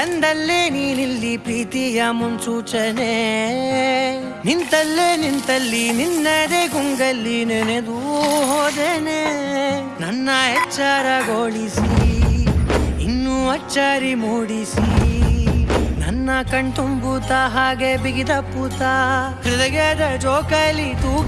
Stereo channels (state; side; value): identical; both; correlation 1.00